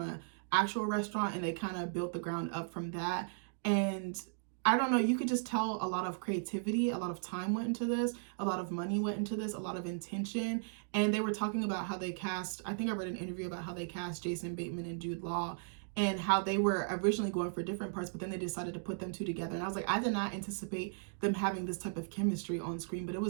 actual restaurant, and they kind of built the ground up from that. And I don't know, you could just tell a lot of creativity, a lot of time went into this, a lot of money went into this, a lot of intention. And they were talking about how they cast, I think I read an interview about how they cast Jason Bateman and Jude Law. and how they were originally going for different parts, but then they decided to put them two together. And I was like, I did not anticipate them having this type of chemistry on screen, but it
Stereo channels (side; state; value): left; silent; digital silence